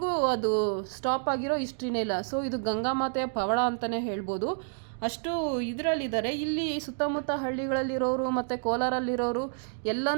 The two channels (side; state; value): left; silent; digital silence